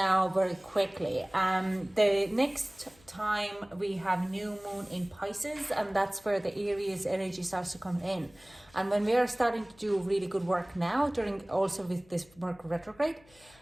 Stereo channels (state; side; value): noise; left; hum, 28 dB below the sound